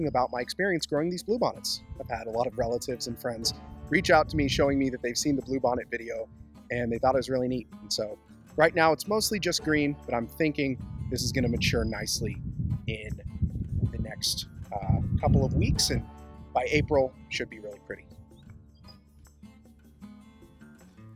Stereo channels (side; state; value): both; identical; correlation 1.00